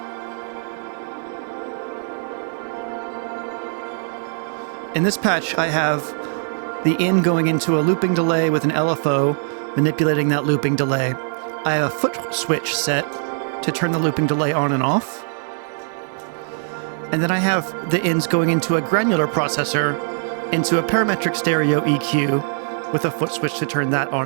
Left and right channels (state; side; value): silent; left; digital silence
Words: In this patch, I have the in going into a looping delay with an LFO, manipulating that looping delay. I have a Footswitch set to turn the looping delay on and off. And then I have the ins going into a granular processor, into a parametric stereo EQ with a Footswitch to turn that on